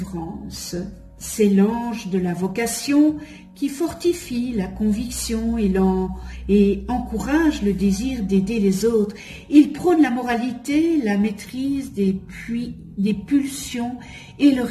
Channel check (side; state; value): both; identical; correlation 1.00